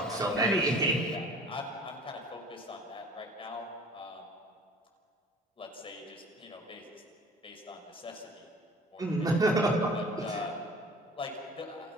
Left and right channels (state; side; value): normal; both; correlation 0.47